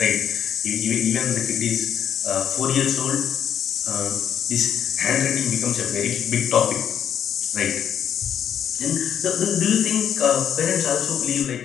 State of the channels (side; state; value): right; quieter; 9.1 dB